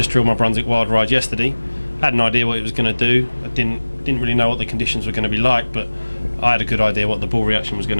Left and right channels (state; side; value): inverted; both; correlation -1.00